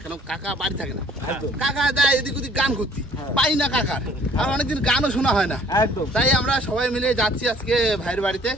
কেন কাকা বাড়ি থাকে না। কাকা দেয় এদিক ওদিক গান করতে, পাই না কাকার, আর অনেকদিন গানও শোনা হয় না। তাই আমরা সবাই মিলে যাচ্ছি আজকে ভাইয়ের বাড়িতে।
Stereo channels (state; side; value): normal; both; correlation 0.56